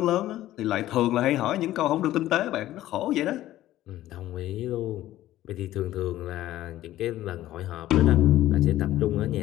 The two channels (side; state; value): right; quieter; 14.4 dB